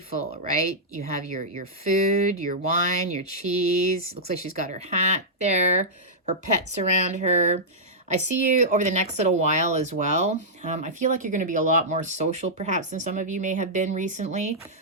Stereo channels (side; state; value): both; normal; correlation -0.11